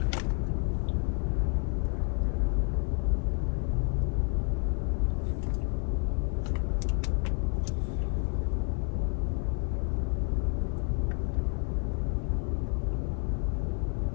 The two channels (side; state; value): right; quieter; 37.3 dB